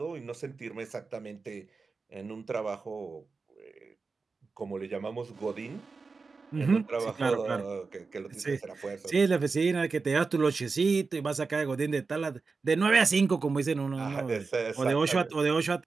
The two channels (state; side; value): quieter; left; 4.4 dB